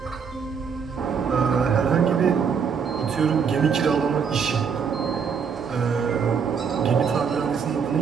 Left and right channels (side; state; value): left; quieter; 6.5 dB